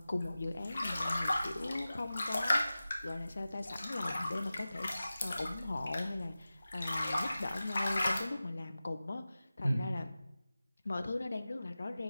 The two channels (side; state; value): both; inverted; correlation -0.95